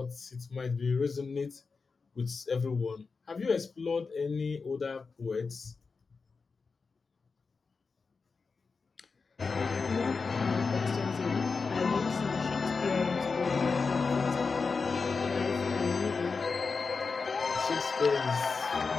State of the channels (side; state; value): right; quieter; 4.7 dB